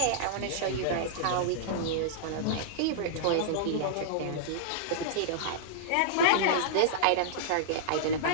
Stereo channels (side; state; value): both; different; correlation -0.02